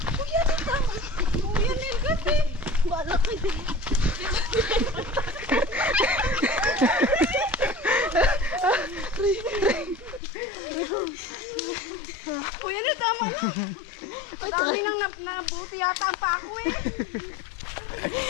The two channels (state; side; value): drops out; right; at 10.2 s